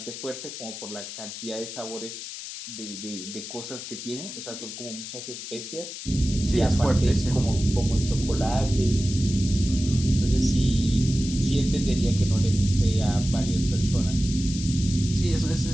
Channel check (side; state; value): left; noise; hiss, 10 dB below the sound